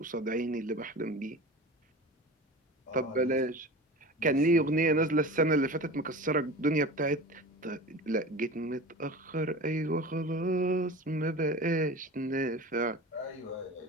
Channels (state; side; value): normal; both; correlation 0.34